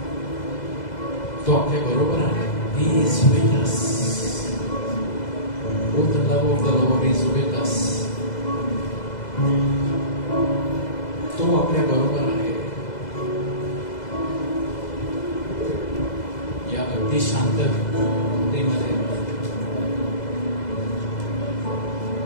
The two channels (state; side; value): late; right; 2.0 ms